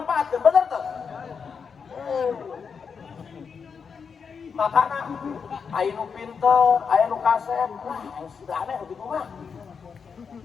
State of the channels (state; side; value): quieter; right; 6.0 dB